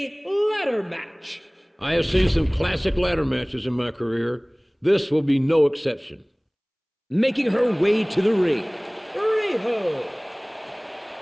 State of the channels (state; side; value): identical; both; correlation 1.00